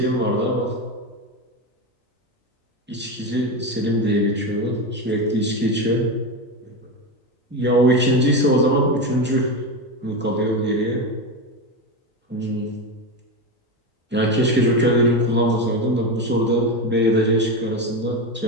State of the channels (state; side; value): normal; both; correlation 0.16